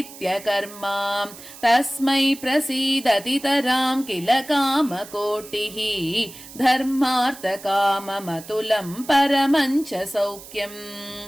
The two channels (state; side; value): noise; right; hiss, 17 dB below the sound